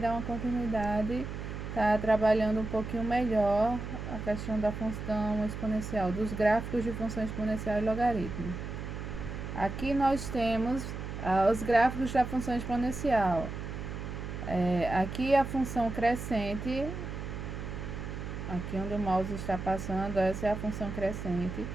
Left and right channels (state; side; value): noise; right; hum, 7 dB below the sound